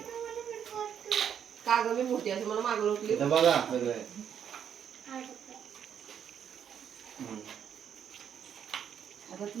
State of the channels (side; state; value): left; quieter; 8.6 dB